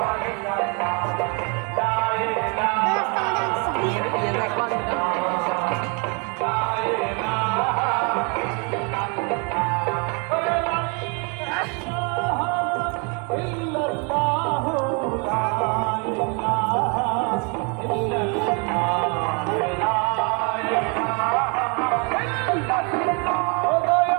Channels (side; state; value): left; quieter; 34.4 dB